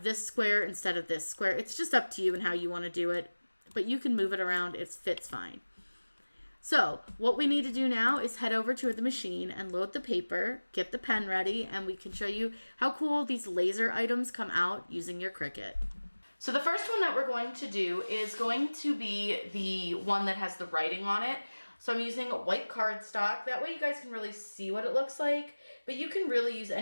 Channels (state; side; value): inverted; both; correlation -1.00